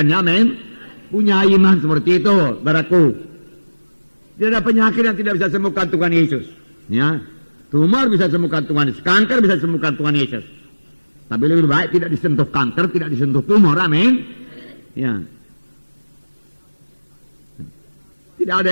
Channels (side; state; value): both; inverted; correlation -1.00